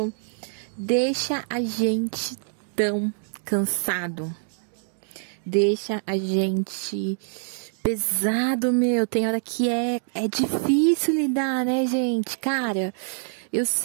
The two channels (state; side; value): silent; left; digital silence